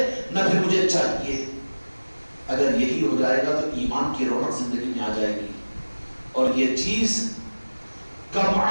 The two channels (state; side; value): inverted; both; correlation -1.00